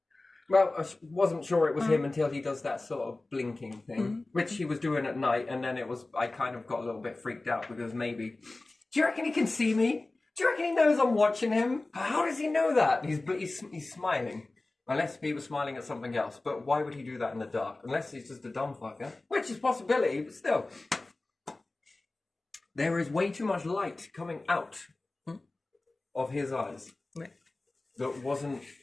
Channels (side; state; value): right; quieter; 3.1 dB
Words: Well, I wasn't sure it was him until he does that sort of blinking thing, which he was doing at night, and then I kind of got a little bit freaked out because maybe, do you reckon he can see me? Do you reckon he knows I'm watching him? How does he know that? He's smiling. Unless he was smiling at something else, but why would he do that in the dark? Unless he's just a dumb fucker, which is a possibility, but still. There is way too much light coming out of his eyes that wasn't...